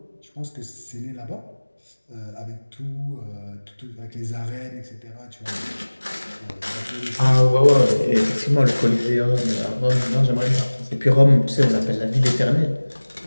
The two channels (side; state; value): both; inverted; correlation -1.00